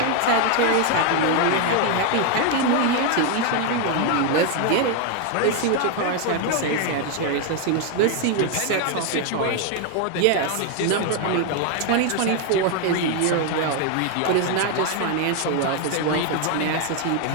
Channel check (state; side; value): different; both; correlation 0.01